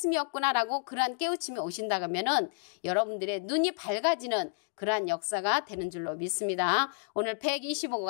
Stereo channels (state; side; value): silent; right; digital silence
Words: 그러한 깨우침이 오신다 하면은 여러분들의 눈이 밝아지는 그러한 역사가 되는 줄로 믿습니다. 오늘